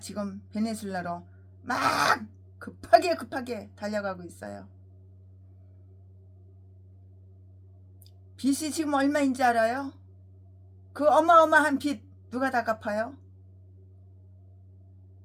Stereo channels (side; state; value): both; identical; correlation 1.00